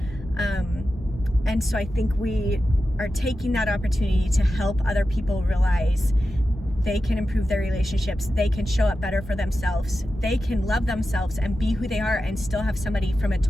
And so I think we are taking that opportunity to help other people realize they can improve their relationships, they can show up better for themselves, they can love themselves and be who they are and still have somebody from a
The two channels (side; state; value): both; normal; correlation 0.92